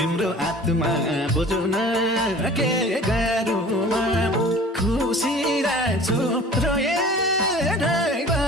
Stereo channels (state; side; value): normal; both; correlation 0.44